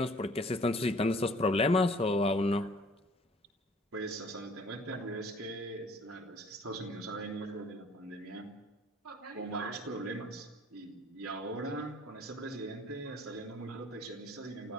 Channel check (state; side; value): normal; both; correlation 0.55